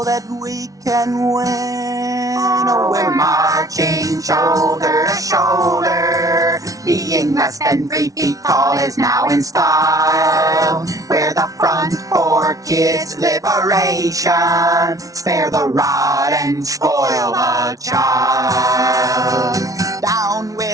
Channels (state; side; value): late; left; 0.17 ms